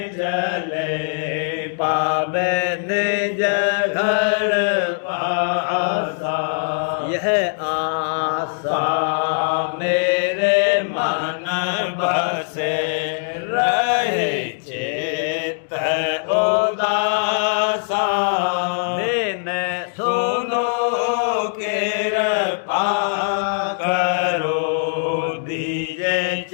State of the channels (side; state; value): right; silent; digital silence